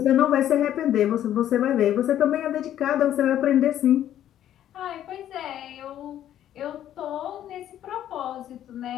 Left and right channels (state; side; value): quieter; right; 11.4 dB